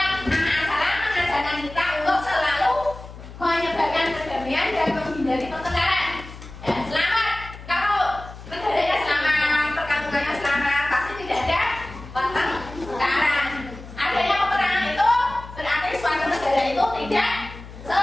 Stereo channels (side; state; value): left; noise; hum, 15 dB below the sound